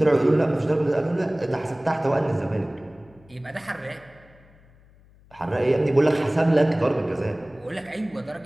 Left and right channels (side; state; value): left; noise; hum, 27 dB below the sound